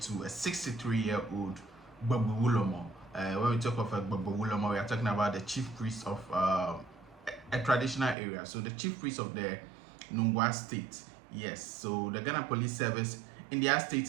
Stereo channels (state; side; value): drops out; left; at 8.2 s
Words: to a 63-year-old Babu Wulomo. When we talk of a Babu Wulomo, we are talking about the chief priest of a traditional area. So the chief priest of the Nungwa state. Yes, so the Ghana Police Service, in their